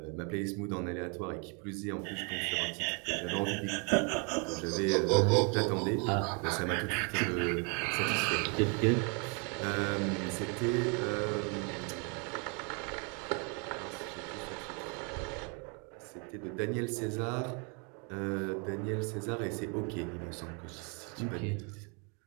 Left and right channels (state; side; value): quieter; left; 35.0 dB